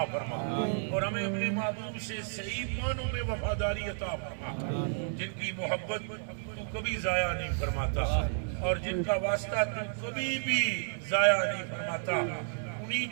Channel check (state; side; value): silent; left; 56 dB below the other